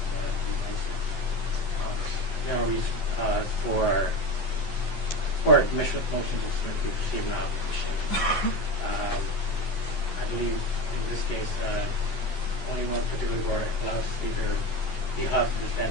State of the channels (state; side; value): late; right; 11 ms